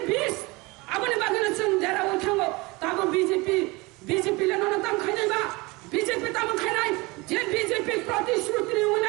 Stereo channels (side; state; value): left; quieter; 24.2 dB